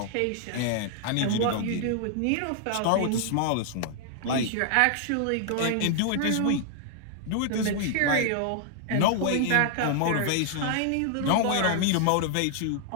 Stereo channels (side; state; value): both; different; correlation 0.00